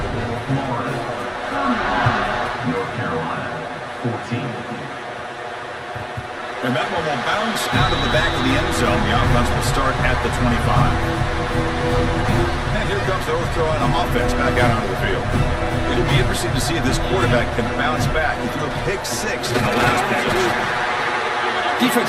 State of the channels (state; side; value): identical; both; correlation 1.00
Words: North Carolina, 14. And that one will bounce out of the back of the end zone. The offense will start at the 25. And here comes the North Carolina offense back out onto the field. It'll be interesting to see if this quarterback can bounce back. He threw a pick six in the last possession.